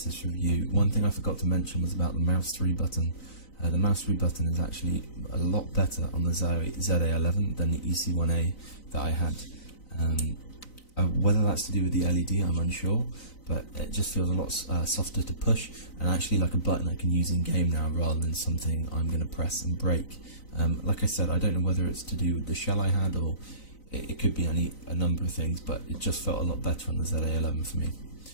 this review, one thing I forgot to mention was about the mouse 3 button. The mouse move button is actually a lot better on the Zowie ZA11 than the EC1A that I had. Whether that's to do with the LED, I'm unsure, but it just feels a lot softer to push, and actually like a button I can use in game now rather than something I'm going to press and break. Like I said, I don't know whether it's to do with the shell I had, or it could be a number of things, but it just felt a lot better on the ZA11 for me.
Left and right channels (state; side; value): late; right; 3.9 ms